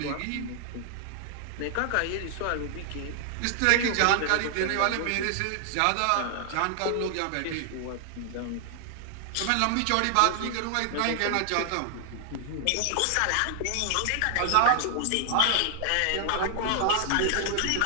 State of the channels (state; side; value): different; both; correlation 0.00